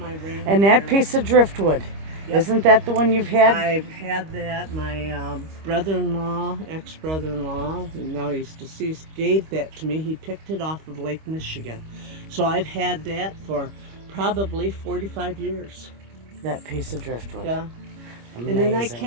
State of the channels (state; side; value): late; left; 25 ms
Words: rain. And that piece of driftwood, isn't that the one you've had? I've had that. My brother-in-law, ex-brother-in-law, and now he's deceased, gave that to me. He picked it off of Lake Michigan. So I've had that for probably 45 years. That piece of driftwood. Yeah. Amazing. And then I